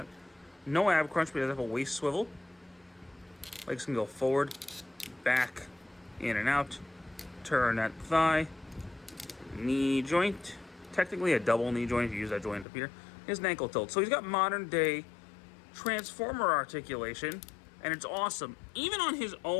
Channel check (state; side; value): drops out; right; at 12.7 s